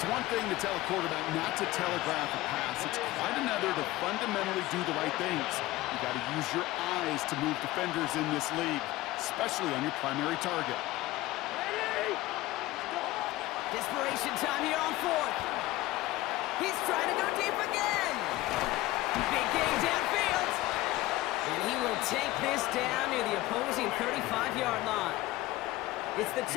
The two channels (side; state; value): right; quieter; 17.6 dB